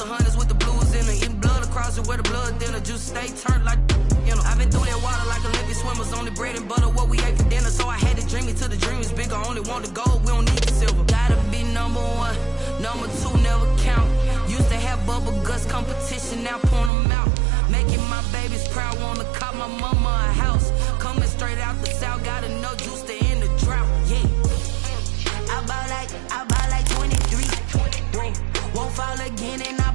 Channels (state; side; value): drops out; left; at 16.9 s